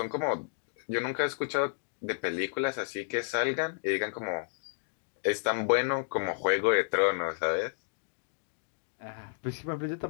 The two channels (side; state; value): right; silent; digital silence